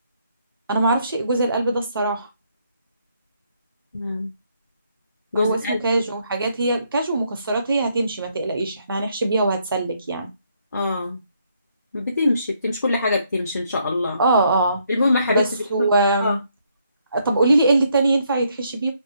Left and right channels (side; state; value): both; inverted; correlation -0.73